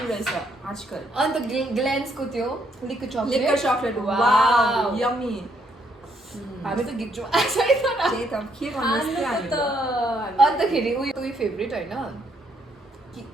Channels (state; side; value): normal; both; correlation 0.72